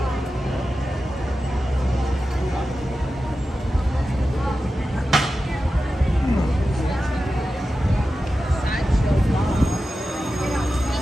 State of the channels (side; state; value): both; normal; correlation 0.92